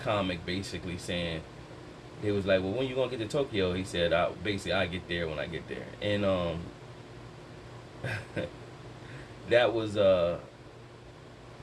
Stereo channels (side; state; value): both; identical; correlation 1.00